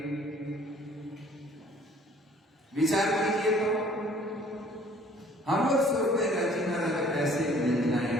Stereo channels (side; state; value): both; normal; correlation 0.55